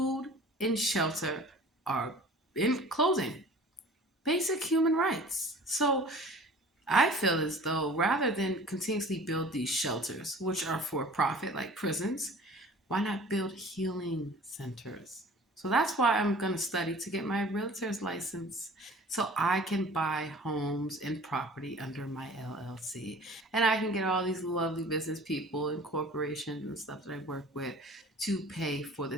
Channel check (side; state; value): both; normal; correlation 0.45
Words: and shelter are, in closing, basic human rights. So I feel as though rather than continuously build these shelters, which are for profit like prisons, why not build healing centers? So that's why I'm going to study to get my realtor's license so I can buy homes and property under my LLC. And I can get all these lovely business people and corporations and stuff that I work with to pay for the